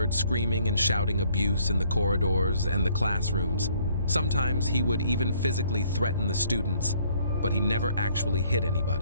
screaming and shouting abuse in the corridors and the classrooms. Sometimes he would even physically threaten the students, but he never actually hit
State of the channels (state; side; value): inverted; both; correlation -0.63